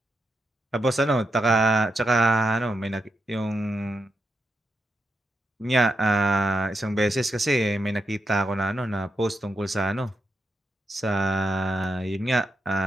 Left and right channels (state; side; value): normal; both; correlation 0.84